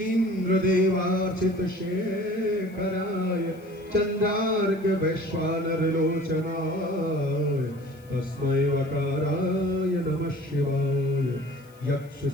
देवार्चित शेखराय चंद्रार्क वैश्वानर लोचनाय तस्मै वकाराय नमः शिवाय यक्ष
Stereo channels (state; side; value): noise; left; hiss, 29 dB below the sound